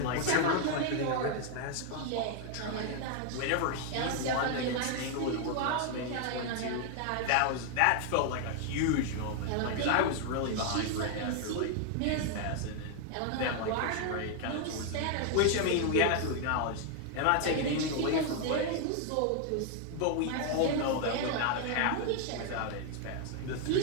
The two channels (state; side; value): different; both; correlation 0.00